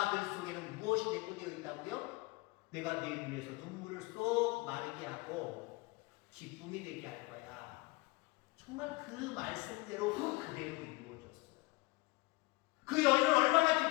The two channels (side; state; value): right; quieter; 23.5 dB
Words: 그 속에는 무엇이 내포되어 있다고요? 내가 네 눈에서 눈물을 쏙 마르게 하고 기쁨이 되게 할 거야. 정말 그 말씀대로 그대로 이루어졌어요. 그 여인은 얼마나